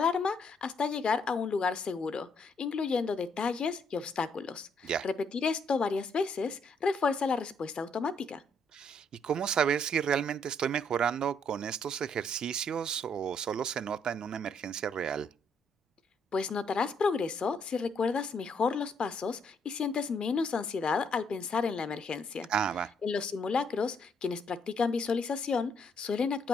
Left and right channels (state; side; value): normal; both; correlation 0.70